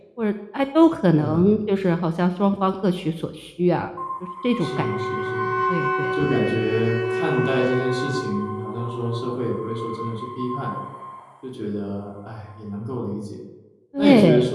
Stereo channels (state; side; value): identical; both; correlation 1.00